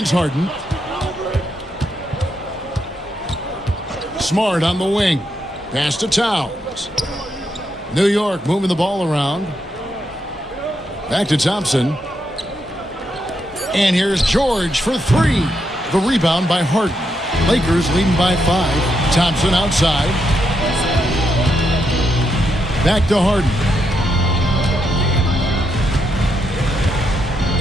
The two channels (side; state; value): both; normal; correlation 0.81